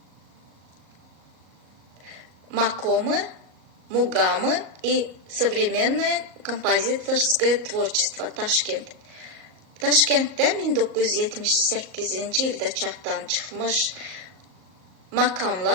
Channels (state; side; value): late; left; 38 ms